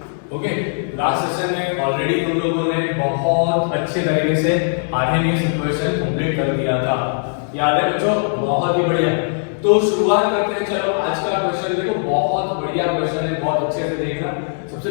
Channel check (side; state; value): right; silent; 60 dB below the other